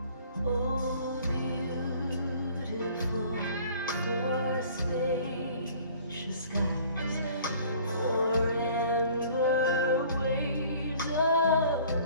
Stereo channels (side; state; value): both; inverted; correlation -0.52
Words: Oh, beautiful for spacious skies, for amber waves of